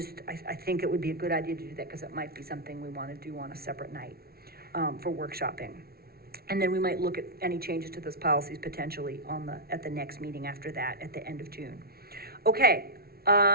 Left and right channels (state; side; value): late; left; 0.44 ms